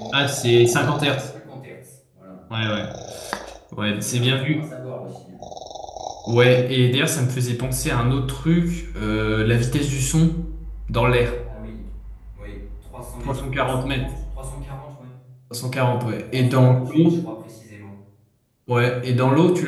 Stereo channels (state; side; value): identical; both; correlation 1.00